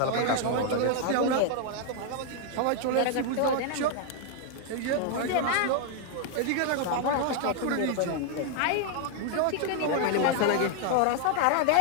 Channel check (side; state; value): both; different; correlation 0.00